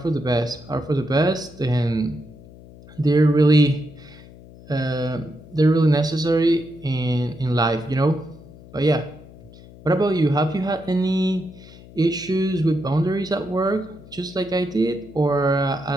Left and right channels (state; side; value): noise; left; hum, 20 dB below the sound